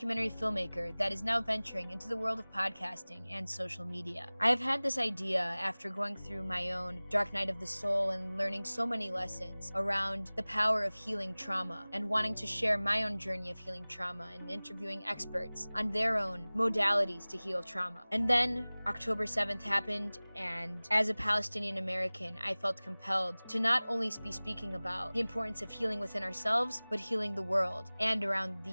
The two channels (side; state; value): both; inverted; correlation -1.00